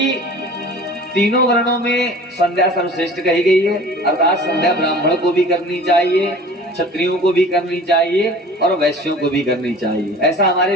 तीनों वर्णों में संध्या सर्वश्रेष्ठ कही गई है। अर्थात संध्या ब्राह्मण को भी करनी चाहिए, क्षत्रियों को भी करनी चाहिए और वैश्यों को भी करनी चाहिए, ऐसा हमारे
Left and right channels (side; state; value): both; normal; correlation 0.43